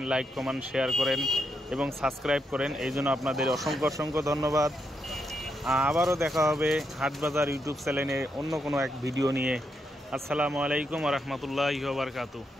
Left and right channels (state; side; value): normal; both; correlation 0.81